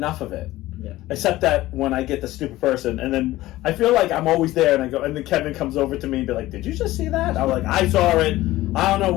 of it. Yeah. Except that when I get the stupid person, and then I feel like I'm always there, and I go, and then Kevin comes over to me and be like, "Did you just see that?" I'm like, "I saw it. I don't know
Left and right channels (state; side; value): quieter; right; 16.7 dB